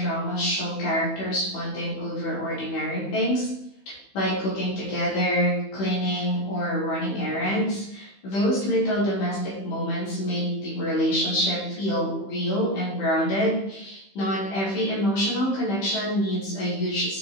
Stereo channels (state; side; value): late; right; 15 ms